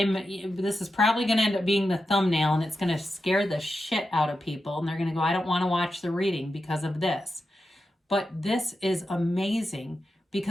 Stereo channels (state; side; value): normal; both; correlation 0.89